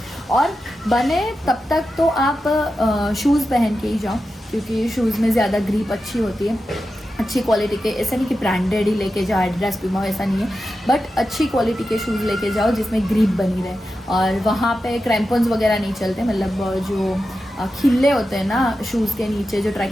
और बने तब तक तो आप शूज़ पहन के ही जाओ क्योंकि शूज़ में ज़्यादा ग्रिप अच्छी होती है, अच्छी क्वालिटी के। ऐसा नहीं कि ब्रांडेड ही लेके जाओ, एडिडास प्यूमा, ऐसा नहीं है, बट अच्छी क्वालिटी के शूज़ लेके जाओ जिसमें ग्रिप बनी रहे। और वहाँ पे क्रैम्पन्स वगैरह नहीं चलते, मतलब जो खिल्ले होते हैं ना शूज़ के नीचे जो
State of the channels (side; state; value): both; normal; correlation 0.91